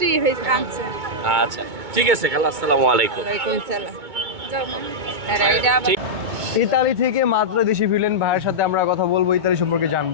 হয়েছে আনছে। আচ্ছা, ঠিক আছে খালা, আসসালামু আলাইকুম। ওয়ালাইকুম সালাম। ইতালি থেকে মাত্র দেশে ফিরলেন ভাইয়ের সাথে আমরা কথা বলবো, ইতালি সম্পর্কে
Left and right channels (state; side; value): late; left; 2.2 ms